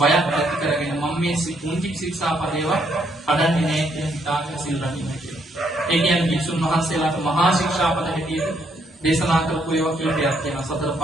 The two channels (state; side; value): normal; both; correlation 0.72